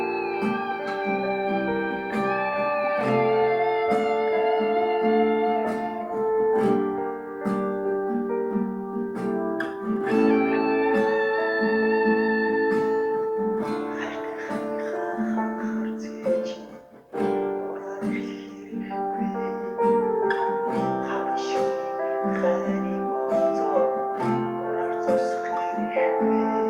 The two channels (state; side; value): identical; both; correlation 1.00